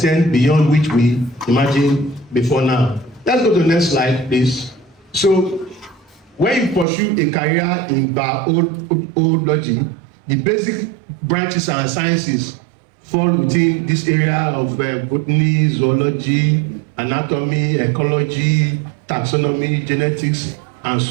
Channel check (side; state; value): left; drops out; at 6.9 s